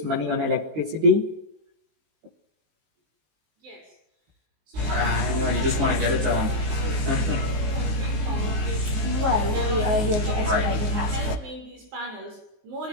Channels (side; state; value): left; late; 19 ms